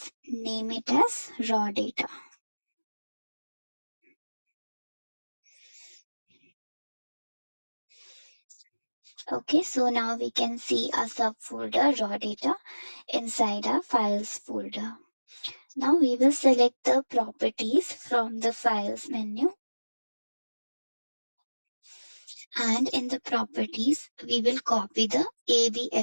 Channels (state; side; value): inverted; both; correlation -1.00